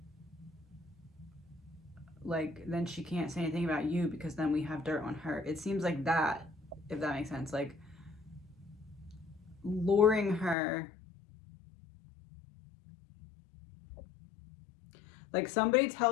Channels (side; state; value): right; drops out; at 10.6 s